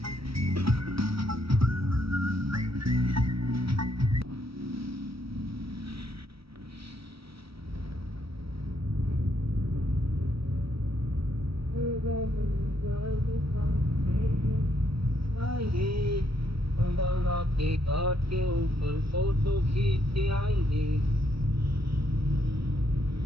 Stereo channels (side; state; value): left; late; 0.76 ms